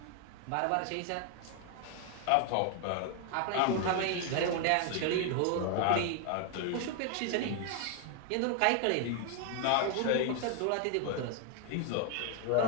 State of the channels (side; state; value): both; different; correlation 0.00